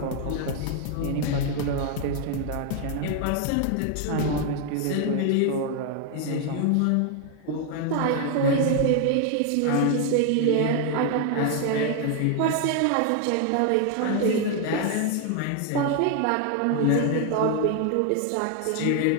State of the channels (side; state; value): both; different; correlation 0.00